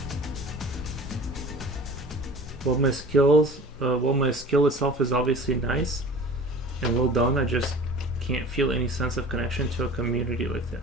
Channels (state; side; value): normal; both; correlation 0.41